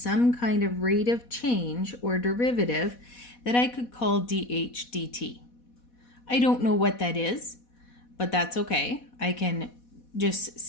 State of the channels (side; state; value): right; late; 4.1 ms